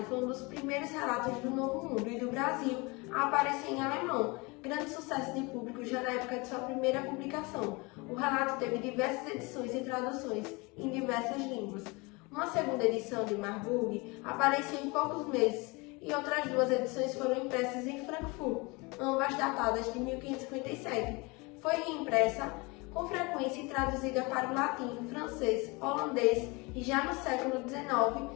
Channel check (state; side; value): quieter; right; 26.5 dB